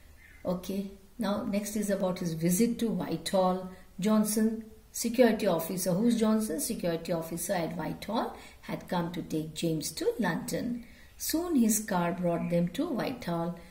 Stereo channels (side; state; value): both; identical; correlation 1.00